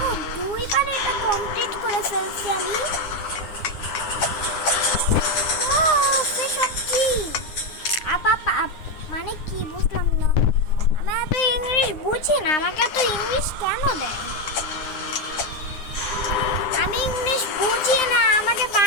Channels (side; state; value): right; late; 9.7 ms